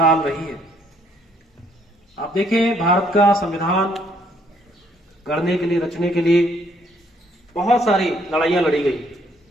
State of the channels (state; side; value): normal; both; correlation 0.67